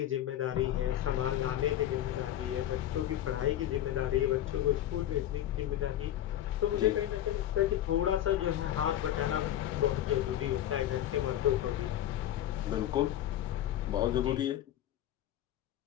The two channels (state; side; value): quieter; right; 12.1 dB